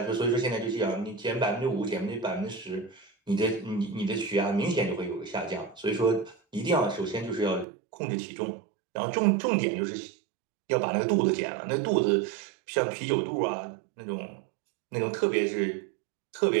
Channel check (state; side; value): drops out; left; at 7.7 s